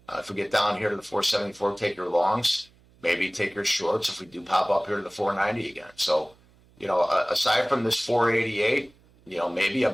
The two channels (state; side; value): noise; right; hum, 30 dB below the sound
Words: If we get down here to the 474, take your longs. Maybe take your shorts if we do pop up here to the 490 again. So, you know, aside from this 488, you know, maybe a